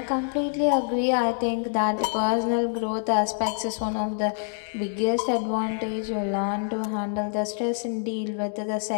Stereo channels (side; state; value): right; silent; digital silence